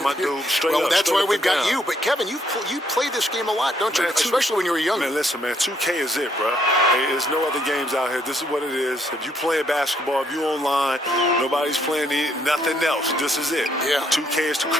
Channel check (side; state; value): both; normal; correlation 0.71